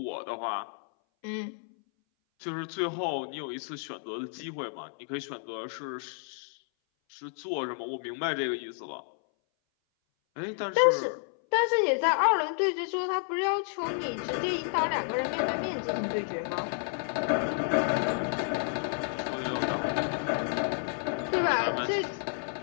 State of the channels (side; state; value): right; silent; 57 dB below the other